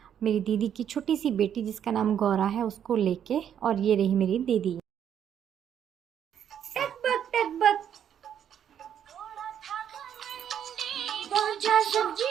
मेरी दीदी की छोटी सी बेटी जिसका नाम गौरा है, उसको लेके। और ये रही मेरी दीदी।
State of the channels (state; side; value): quieter; left; 9.2 dB